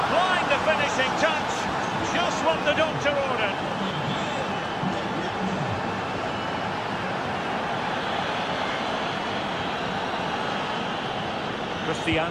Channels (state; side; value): identical; both; correlation 1.00